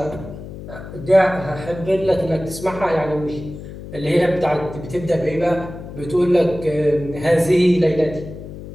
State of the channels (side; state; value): left; noise; hum, 12 dB below the sound